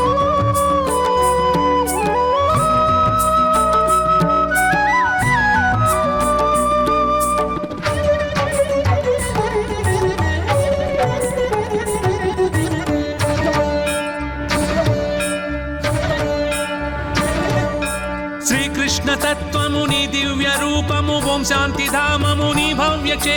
శ్రీకృష్ణ తత్వము నీ దివ్య రూపము ఓం శాంతి ధామము నీ భవ్య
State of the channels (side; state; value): both; identical; correlation 1.00